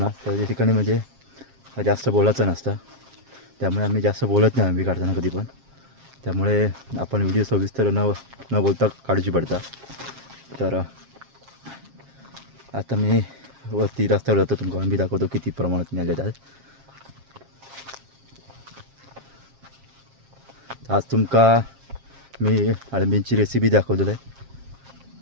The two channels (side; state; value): left; late; 7.4 ms